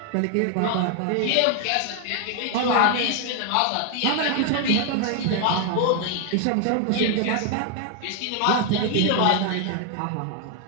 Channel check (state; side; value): different; both; correlation 0.00